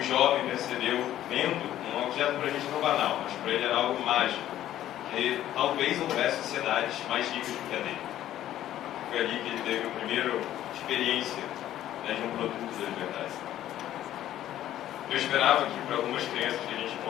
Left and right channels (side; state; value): right; quieter; 12.6 dB